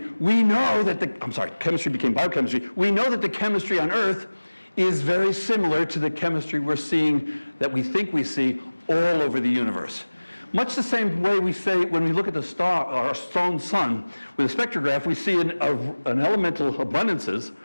We know that chemistry became biochemistry. We know that the chemistry on Earth is very similar to the chemistry we're seeing, that we think we see all over the universe. Much the same way we say when we look at the star, our own sun, with a spectrograph, we see an elemental abundances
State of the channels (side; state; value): both; inverted; correlation -1.00